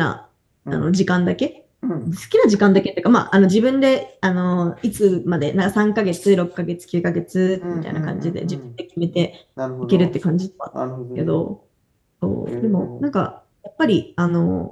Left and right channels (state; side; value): identical; both; correlation 1.00